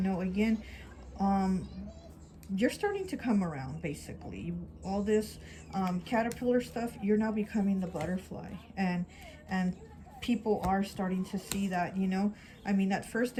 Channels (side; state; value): both; identical; correlation 1.00